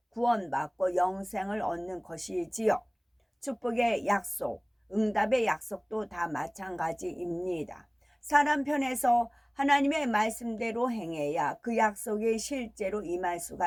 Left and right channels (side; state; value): both; identical; correlation 1.00